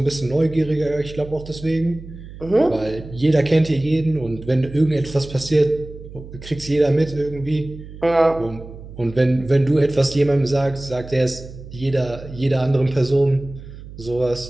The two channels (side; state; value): right; noise; hum, 15 dB below the sound